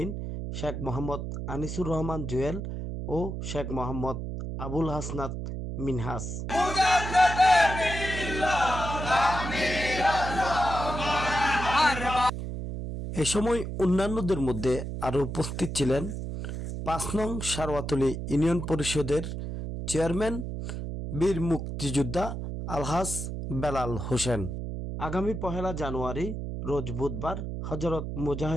শেখ মোহাম্মদ আনিসুর রহমান জুয়েল ও শেখ মোহাম্মদ আবুল হাসনাত মিনহাস। এ সময় অন্যান্যদের মধ্যে আরও উপস্থিত ছিলেন ৫ নং সারওয়াতলী ইউনিয়ন পরিষদের চেয়ারম্যান বীর মুক্তিযোদ্ধা আলহাজ বেলাল হোসেন। আগামী ১লা জানুয়ারি রোজ বুধবার হযরত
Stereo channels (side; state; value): right; noise; hum, 5 dB below the sound